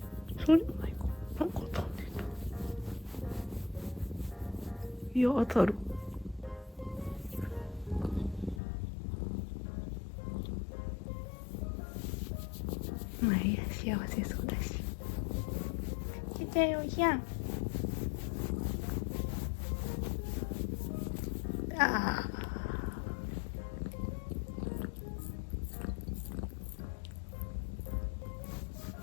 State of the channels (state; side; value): drops out; right; at 8.6 s